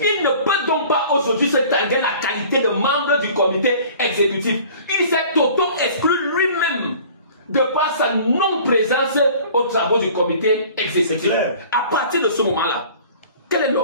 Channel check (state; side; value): inverted; both; correlation -0.47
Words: Il ne peut donc pas aujourd'hui se targuer la qualité de membre du comité exécutif. Il s'est auto-exclu lui-même de par sa non-présence aux travaux du comité exécutif. À partir de ce moment-là, quel est